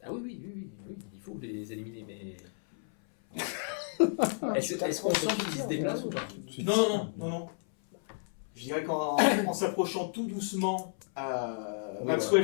Ah oui, il faut les éliminer, mais. Est-ce qu'on sent qu'ils se déplacent ou pas? Non. Je dirais qu'en s'approchant tout doucement, Maxwell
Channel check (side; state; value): right; silent; 56 dB below the other